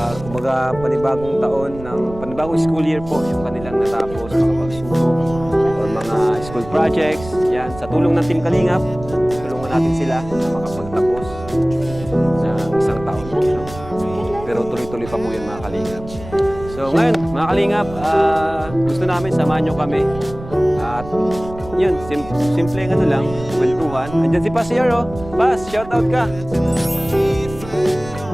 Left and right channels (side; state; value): right; noise; rumble, 14 dB below the sound